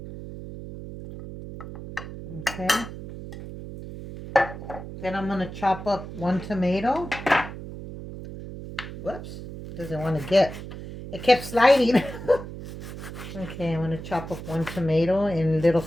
Okay. Then I'm going to chop up 1 tomato. Whoops. Doesn't want to get. It kept sliding. Okay, I'm going to chop up 1 tomato in little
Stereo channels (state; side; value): noise; right; hum, 11 dB below the sound